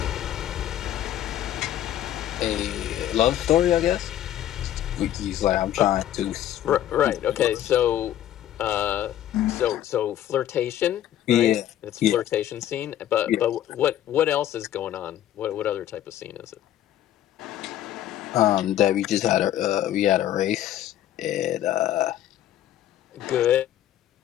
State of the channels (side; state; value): right; quieter; 12.0 dB